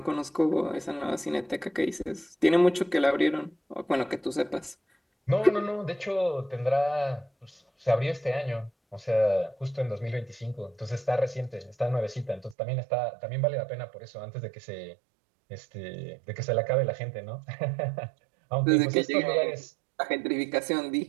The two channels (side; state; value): left; drops out; at 12.6 s